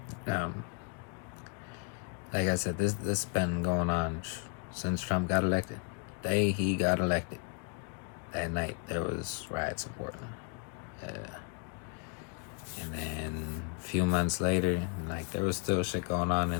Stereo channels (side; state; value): right; quieter; 39.1 dB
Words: Like I said, this been going on since Trump got elected. The day he got elected, that night there was riots in Portland. And then a few months later, there was still shit going on,